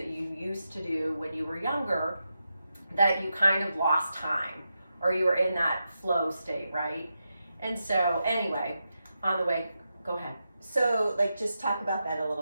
you used to do when you were younger that you kind of lost time or you were in that flow state, right? And so anyway, on the way, go ahead. So, just talk about that a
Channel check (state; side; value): inverted; both; correlation -0.88